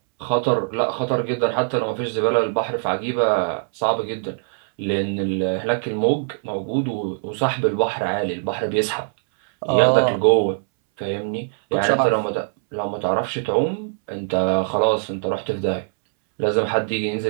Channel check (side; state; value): left; silent; 63 dB below the other